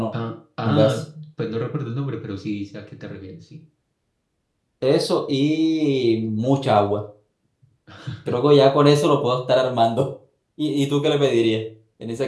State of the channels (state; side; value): identical; both; correlation 1.00